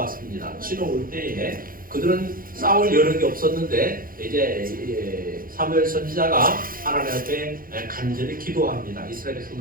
치러 올 때에 그들은 싸울 여력이 없었는데 이제 사무엘 선지자가 하나님 앞에 간절히 기도합니다. 이스라엘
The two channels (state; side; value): late; left; 0.41 ms